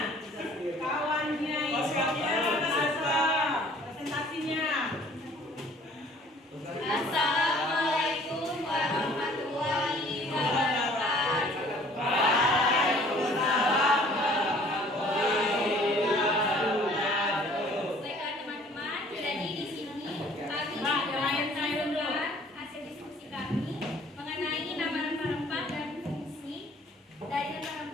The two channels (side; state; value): both; normal; correlation 0.55